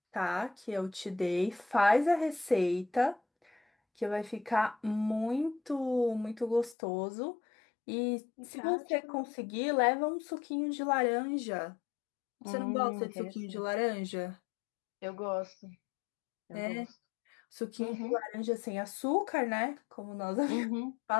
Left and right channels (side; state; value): right; drops out; at 6.8 s